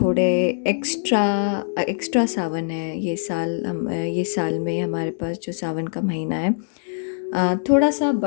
एक्स्ट्रा एक्स्ट्रा सावन है। ये साल में हमारे पास जो सावन का महीना है थोड़ा सा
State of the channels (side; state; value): right; silent; digital silence